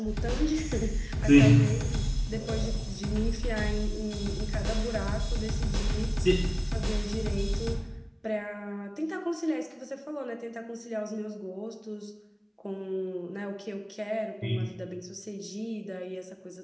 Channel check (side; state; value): both; identical; correlation 1.00